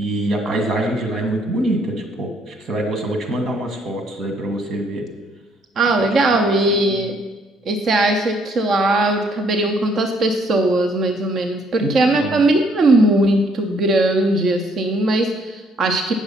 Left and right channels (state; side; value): normal; both; correlation 0.67